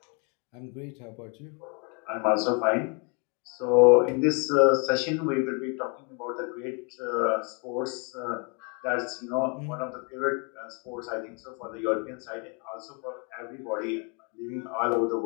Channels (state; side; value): quieter; right; 35.1 dB